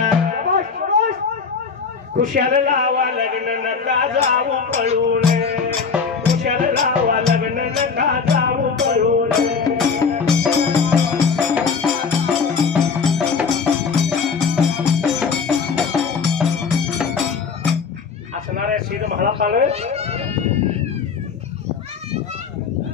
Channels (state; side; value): quieter; right; 5.6 dB